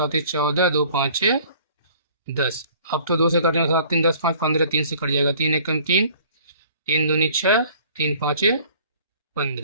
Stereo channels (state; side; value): inverted; both; correlation -0.53